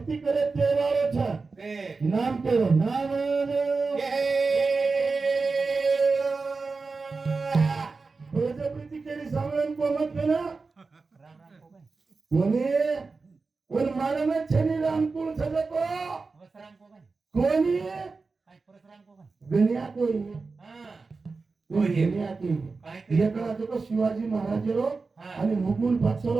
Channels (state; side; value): quieter; left; 4.2 dB